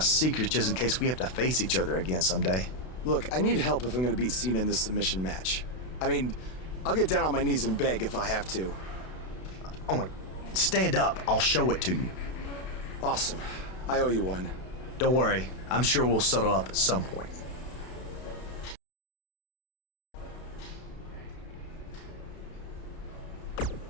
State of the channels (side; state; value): right; late; 32 ms